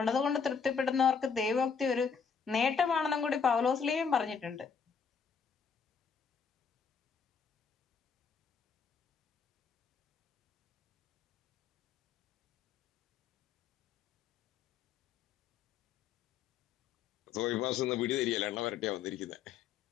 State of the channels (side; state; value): right; quieter; 6.2 dB